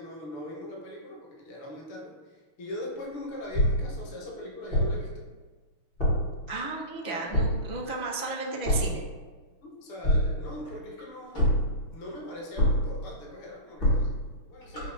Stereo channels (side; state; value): right; late; 6.0 ms